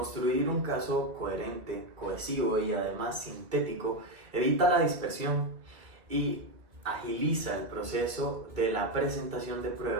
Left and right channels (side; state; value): left; late; 2.2 ms